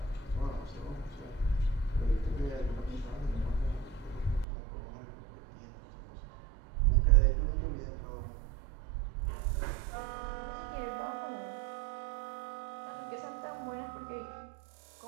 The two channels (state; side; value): drops out; left; at 4.5 s